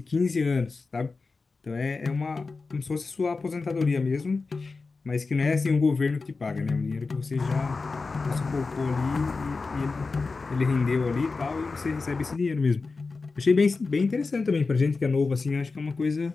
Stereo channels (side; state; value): right; quieter; 4.1 dB